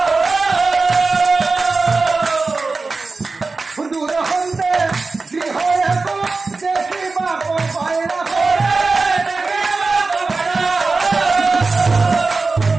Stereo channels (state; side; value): quieter; left; 3.9 dB